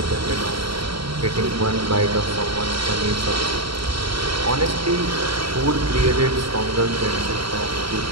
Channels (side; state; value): left; late; 0.75 ms